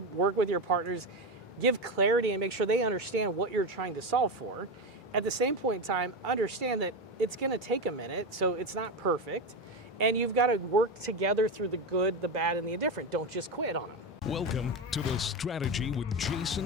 with your partners, give clarity and make sure they understand what you're trying to solve for. At the same point in time, understand that it's going to take a minute, so it's not perfect. And you've got to work together through the good, the bad, and the indifferent. Don't just quit on them. Welcome to the Strategy with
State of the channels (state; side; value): normal; both; correlation 0.16